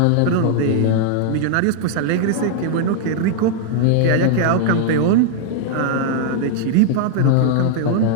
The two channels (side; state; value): both; different; correlation -0.01